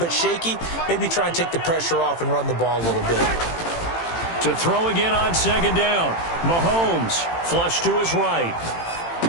shaky, maybe try and take the pressure off and run the ball a little bit. To throw again on second down. Mahomes flush to his right.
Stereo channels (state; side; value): late; right; 18 ms